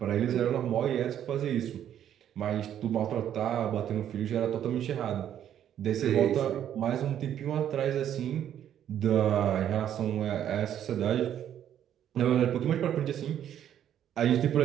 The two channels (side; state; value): left; quieter; 10.3 dB